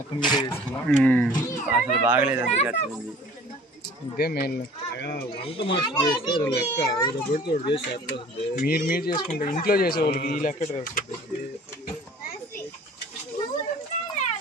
మీరే చేసుకున్నాం, అసలు బాగలేదు. ఇదే మెయిన్ వంట మాస్టర్ చేస్తే లెక్క మీరు చేసుకుంటే ఇంట్లో చేసే వాళ్ళకి ఈ లెక్క వస్తుంది.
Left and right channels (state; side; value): normal; both; correlation 0.49